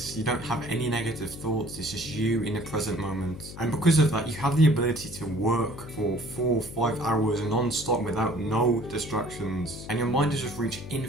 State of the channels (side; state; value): left; noise; hum, 13 dB below the sound